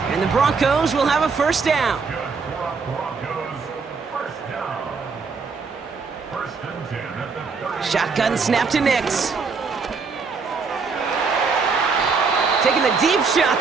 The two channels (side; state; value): left; quieter; 4.9 dB